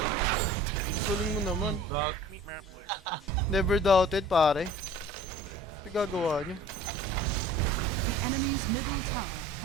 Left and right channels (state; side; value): normal; both; correlation 0.46